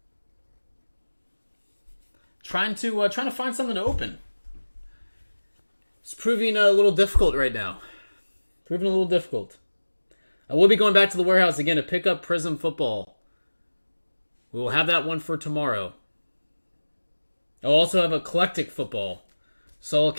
Trying to find something to open. proving a little difficult right now. Proving a little difficult. I will be going back to the warehouse again to pick up Prism Football. We will have that one for tomorrow. I'll also have Eclectic Football. Saw a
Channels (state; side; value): inverted; both; correlation -1.00